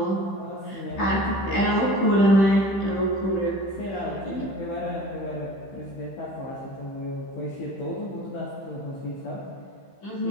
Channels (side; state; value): right; late; 15 ms